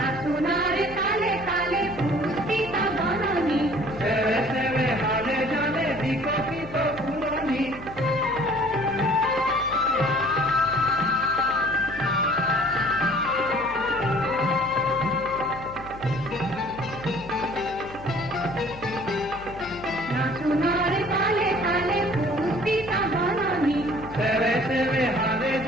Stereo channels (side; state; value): left; noise; hum, 17 dB below the sound